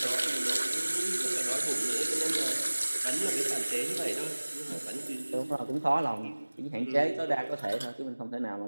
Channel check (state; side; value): inverted; both; correlation -1.00